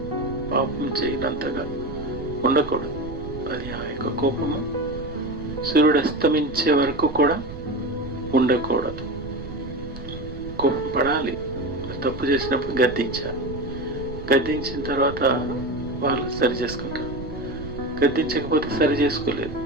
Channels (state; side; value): noise; right; rumble, 12 dB below the sound